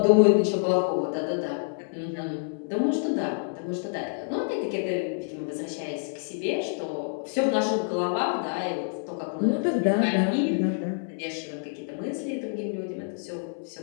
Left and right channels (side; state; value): right; silent; 59 dB below the other